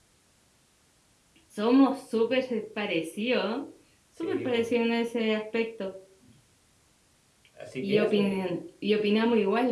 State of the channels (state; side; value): identical; both; correlation 1.00